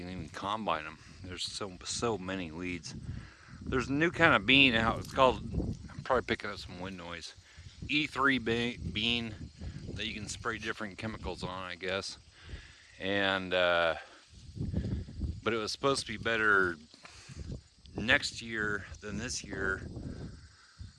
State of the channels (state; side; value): identical; both; correlation 1.00